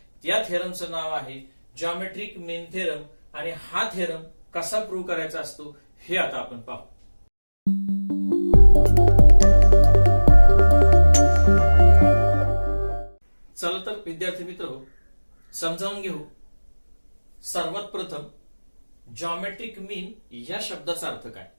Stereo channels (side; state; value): both; inverted; correlation -1.00